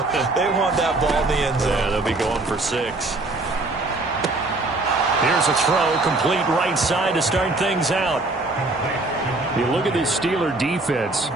They want that ball in the end zone. Yeah, they'll be going for 6. Here's a throw, complete right side to start things out. You look at this Steeler defense.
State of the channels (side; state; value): left; quieter; 3.0 dB